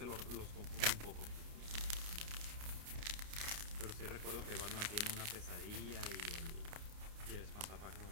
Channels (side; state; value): left; late; 29 ms